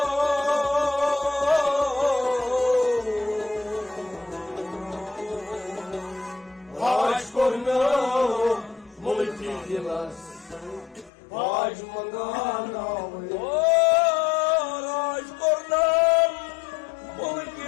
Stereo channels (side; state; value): right; drops out; at 11.1 s